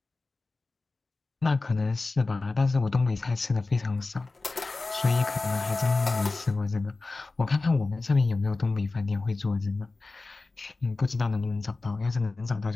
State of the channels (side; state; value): right; quieter; 3.5 dB